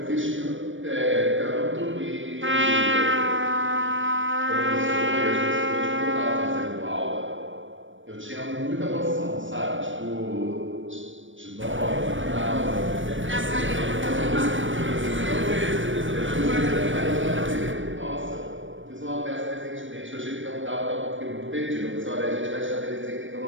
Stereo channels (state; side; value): late; left; 0.56 ms